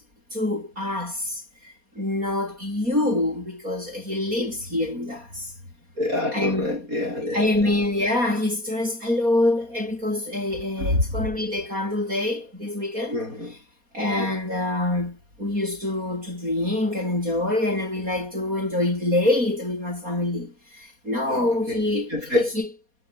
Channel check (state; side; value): late; left; 4.2 ms